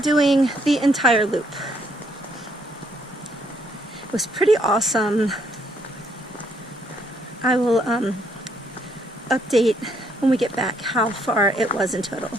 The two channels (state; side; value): normal; both; correlation 0.70